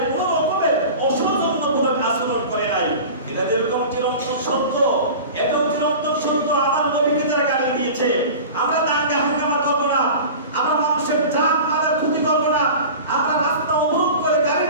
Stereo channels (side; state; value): both; inverted; correlation -0.35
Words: কোন রকমের অসৌজন্যমূলক আচরণ করে নাই। এটা যেরকম চিরন্তন সত্য, এটাও চিরন্তন সত্য। আমার নবীকে যারা গালি দিয়েছে, আমরা দাঙ্গা হাঙ্গামা করবো না, আমরা মানুষের জান মালের ক্ষতি করবো না, আমরা রাস্তা অবরোধ করে